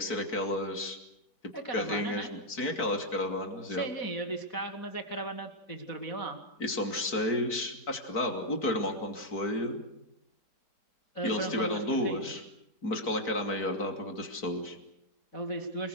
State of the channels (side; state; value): right; late; 4.5 ms